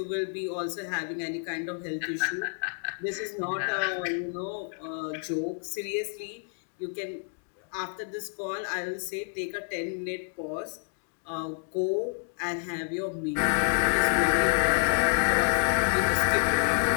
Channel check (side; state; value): right; silent; 59 dB below the other